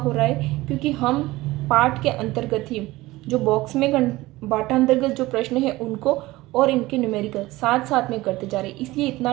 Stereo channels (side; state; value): left; quieter; 18.9 dB